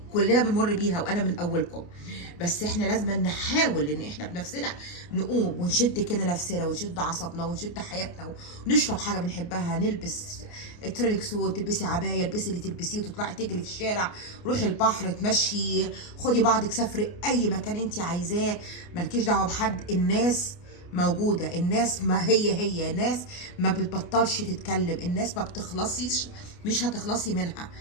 كلنا بنمر بيها وانا من اولكم، بس احنا لازم نحاول ان احنا بنفسنا نقوم ونشد كده نفسنا ونشد عصبنا ونشد حياتنا ونشرب حاجه بنحبها، نلبس ترينك سوت، تلبسي عبايه، البسي اللي تلبسيه وتطلعي تجري في الشارع، روحي البحر، تمشي، خدي بعضك، سافري اي مكان انت عايزاه، مالكيش دعوه بحد. الناس موجودة، الناس ما هي الناس ما بتبطلش تتكلم، الناس ما بتخلصيش، مش هتخلصي منها،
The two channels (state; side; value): late; right; 29 ms